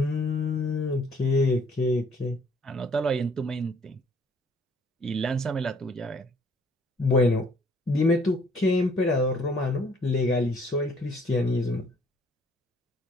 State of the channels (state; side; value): normal; both; correlation 0.61